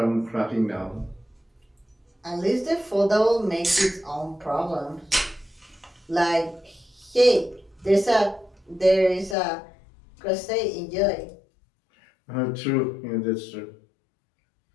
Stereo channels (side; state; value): right; drops out; at 9.3 s